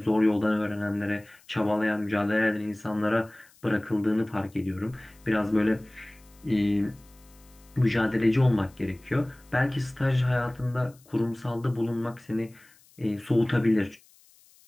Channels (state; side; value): noise; left; hiss, 29 dB below the sound